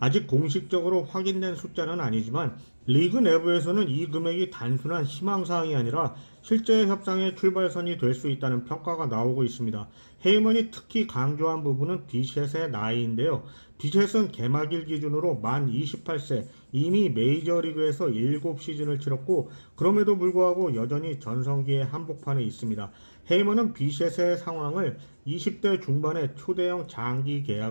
아직 공식적으로 확인된 숫자는 아니지만 리그 내부에서는 이 금액이 단순한 희망사항이 아니라 실제 협상의 출발선이 될 수 있다는 평가가 나오고 있습니다. 헤이먼이 특히 강조한 부분은 비셋의 나이인데요. 비셋은 개막일 기준으로 만 28세, 이미 메이저리그에서 7시즌을 치렀고 그럼에도 불구하고 여전히 전성기의 한복판에 있습니다. 헤이먼은 비셋의 상황을 20대 중반에 초대형 장기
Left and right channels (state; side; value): inverted; both; correlation -1.00